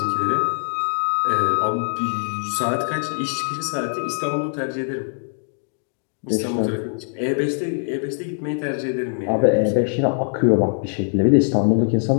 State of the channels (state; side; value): silent; right; digital silence